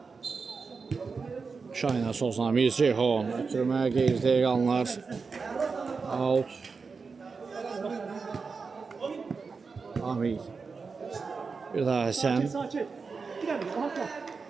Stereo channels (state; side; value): quieter; left; 4.9 dB